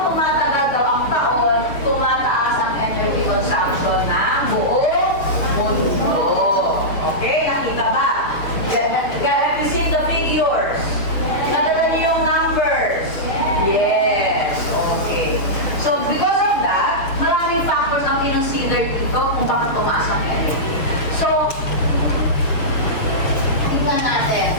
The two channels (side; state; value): right; late; 6.8 ms